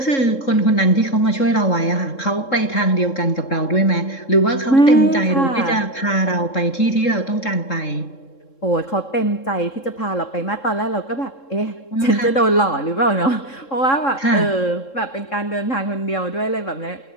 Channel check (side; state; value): right; late; 3.7 ms